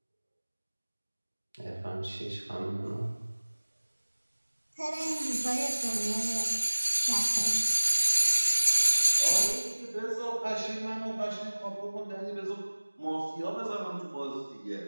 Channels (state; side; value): inverted; both; correlation -1.00